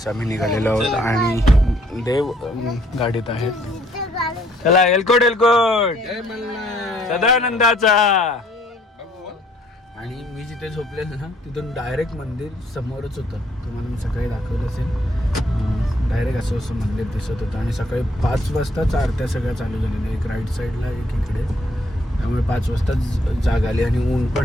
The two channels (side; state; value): both; normal; correlation 0.65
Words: आम्ही निघालेलो आहोत आणि देव गाडीत आहेत. चला एलकोट सदानंदाचा. आणि मी जिथे झोपलेलो ना तिथून डायरेक्ट मंदिर समोरच होतं. तुम्हाला मी सकाळी दाखवलं असेल. डायरेक्ट असं मंदिर दिसत होतं. आणि सकाळी 5 वाजताच आरत्या सगळ्या चालू झालेल्या, एक राईट साईडला एक इकडे. त्यामुळे 5 वाजताच जाग आली आणि ऊन